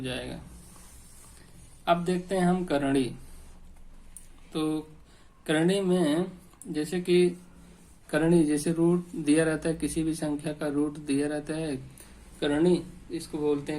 जाएगा। अब देखते हैं हम करणी। तो करणी में जैसे कि करणी, जैसे रूट दिया रहता है, किसी भी संख्या का रूट दिया रहता है, करणी इसको बोलते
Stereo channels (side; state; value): both; identical; correlation 1.00